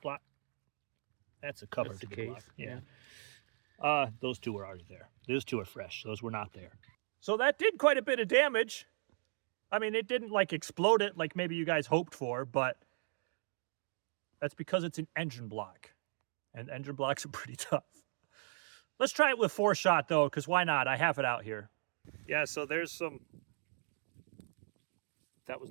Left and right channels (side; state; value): left; silent; 53 dB below the other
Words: That's a cover to the case. Block. Yeah. Those 2 were already there. Those 2 are fresh. Those were not there. So that did quite a bit of damage. I mean, it didn't like explode it like maybe you guys hoped for, but that's because it's an engine block. And engine blocks are pretty tough. Let's try it with 4-shot though, because why not? I have it out here. Yeah, so there's some... That